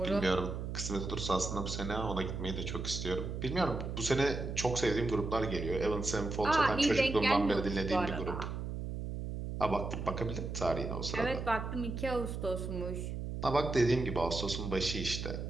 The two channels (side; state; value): right; noise; hum, 5 dB below the sound